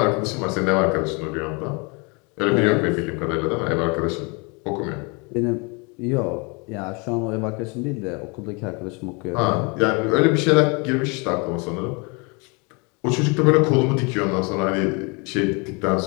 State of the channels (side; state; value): right; quieter; 31.0 dB